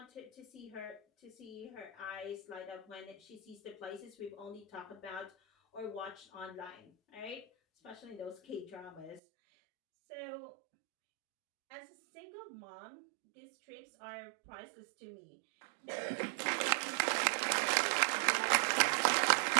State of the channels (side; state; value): left; drops out; at 9.2 s